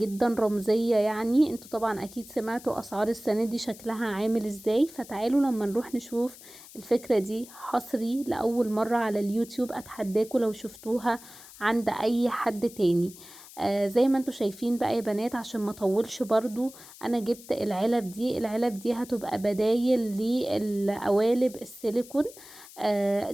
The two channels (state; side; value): noise; left; hiss, 19 dB below the sound